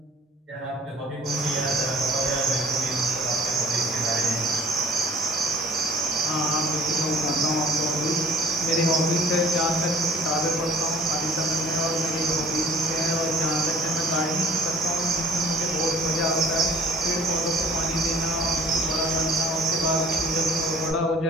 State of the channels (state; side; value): normal; both; correlation 0.50